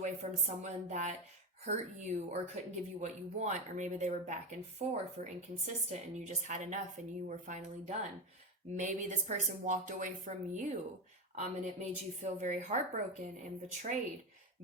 from someone that hurt you or couldn't give you what you want, or maybe they were back and forth or inconsistent and you just had enough and you were finally done. Maybe this person walked away from you and it made you feel very heartbroken and betrayed.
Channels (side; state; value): both; normal; correlation 0.17